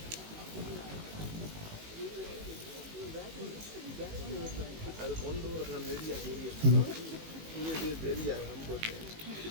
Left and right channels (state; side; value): late; left; 19 ms